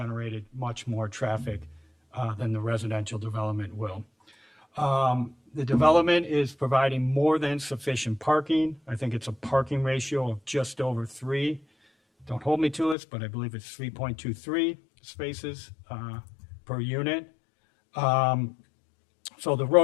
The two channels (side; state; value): right; drops out; at 13.0 s